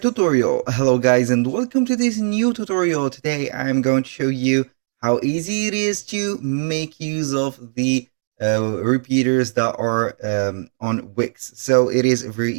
Hello guys and welcome to this new tutorial. Today I'm going to show you how easy it is to make use of the repeaters that are on Wix. So it is very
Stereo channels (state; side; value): silent; left; digital silence